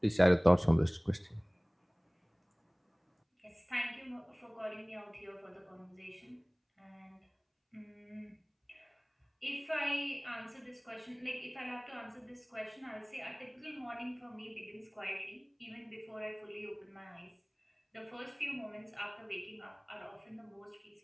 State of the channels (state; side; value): identical; both; correlation 1.00